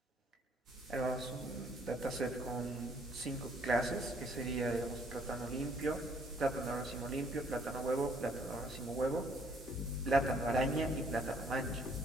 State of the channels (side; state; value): both; normal; correlation 0.64